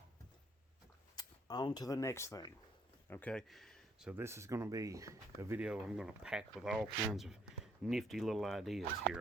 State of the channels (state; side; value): normal; both; correlation 0.67